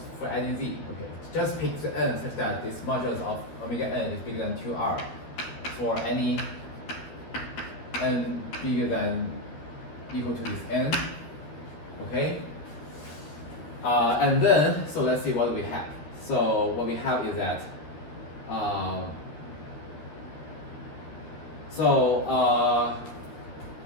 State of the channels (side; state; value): right; late; 12 ms